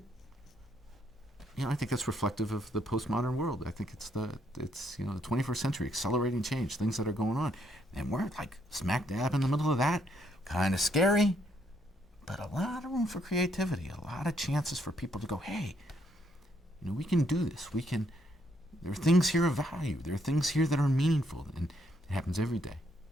I think that's reflective of the postmodern world. I think it's the 21st century, accelerating change, things that are going on. And we're like smack dab in the middle of that. Kind of scary, but a lot of room for creativity, a lot of chances for people to go, hey, we can do this. There are things here of value. There are things here that are meaningful. And it happens every day.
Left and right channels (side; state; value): both; normal; correlation 0.72